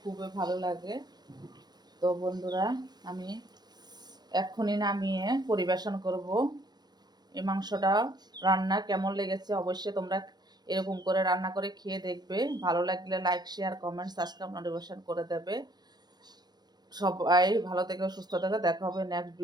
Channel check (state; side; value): late; left; 0.20 ms